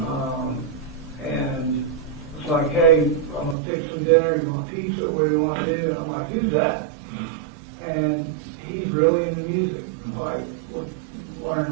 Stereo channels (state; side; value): drops out; left; at 3.6 s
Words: And it's like, hey, I'm going to fix some dinner. You want pizza? What do you want to do? And I'm like, who's that? And he's really into music. Like,